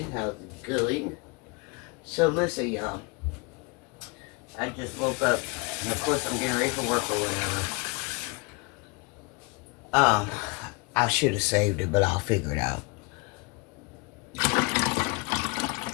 How's it going? So listen, y'all. I just woke up, and of course I'm getting ready for work or whatever. I should have saved it, but I'll figure it out.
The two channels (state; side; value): quieter; right; 27.9 dB